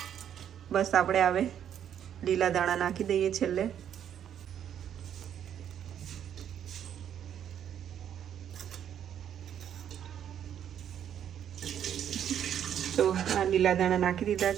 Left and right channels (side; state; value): left; quieter; 9.5 dB